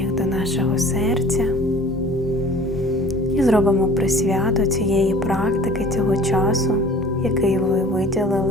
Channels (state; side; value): normal; both; correlation 0.47